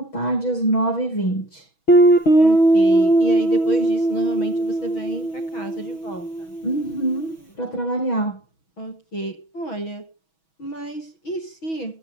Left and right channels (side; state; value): right; late; 6.2 ms